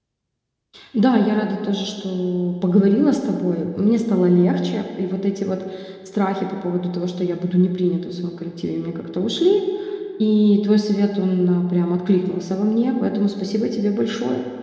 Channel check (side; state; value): both; identical; correlation 1.00